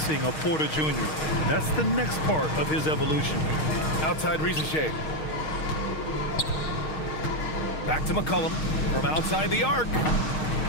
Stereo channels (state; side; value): late; right; 6.4 ms